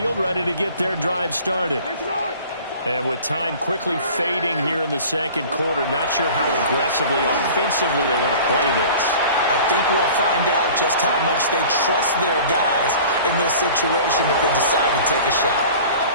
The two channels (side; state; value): both; inverted; correlation -0.43